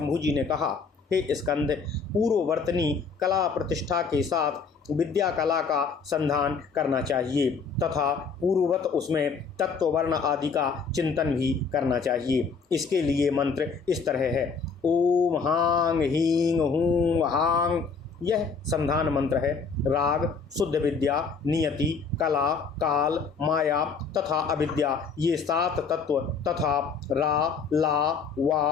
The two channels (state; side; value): quieter; right; 5.2 dB